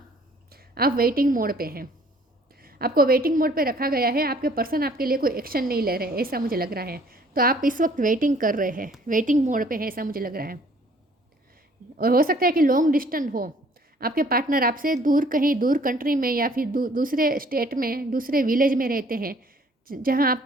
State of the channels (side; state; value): both; normal; correlation 0.58